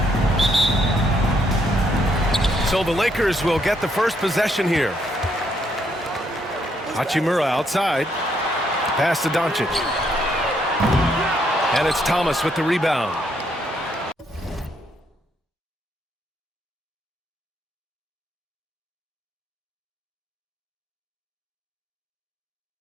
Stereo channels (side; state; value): both; normal; correlation 0.73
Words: So the Lakers will get the first possession here. Hachimura outside. Pass to Doncic. And it's Thomas with the rebound.